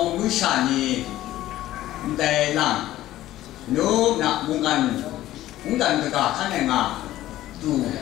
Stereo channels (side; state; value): right; quieter; 14.6 dB